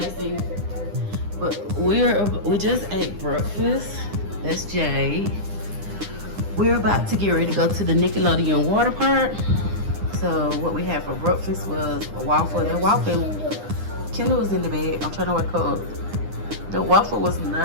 but we just ate breakfast. That's Jade. We're about to get ready to go to the Nickelodeon Waterpark. So what we had for breakfast was a waffle. That waffle, Kendall was in the bed. I'm trying to wake her up. The waffle was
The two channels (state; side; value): late; left; 9.8 ms